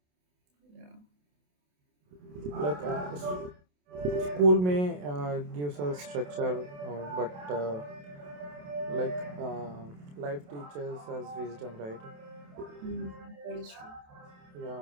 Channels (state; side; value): late; left; 27 ms